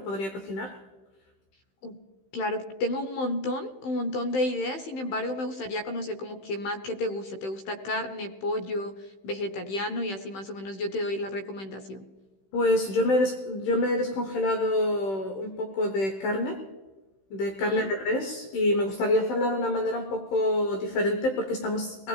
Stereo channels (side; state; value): right; late; 15 ms